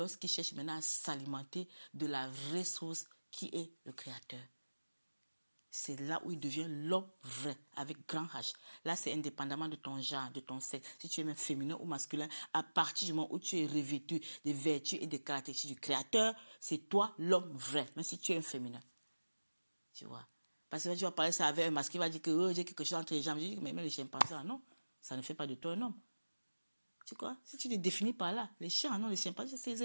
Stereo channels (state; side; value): inverted; both; correlation -1.00